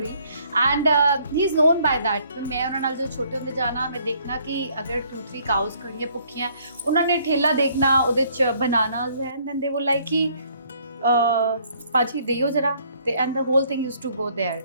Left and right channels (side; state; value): both; inverted; correlation -0.64